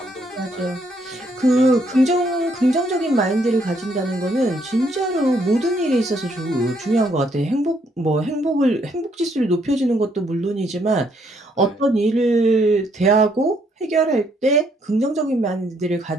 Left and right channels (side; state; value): both; normal; correlation 0.71